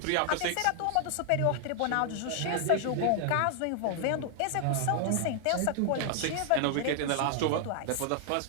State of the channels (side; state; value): both; different; correlation 0.00